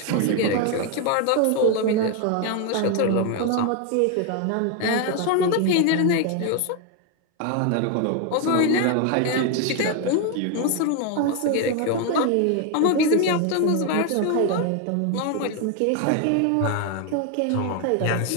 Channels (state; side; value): different; both; correlation 0.01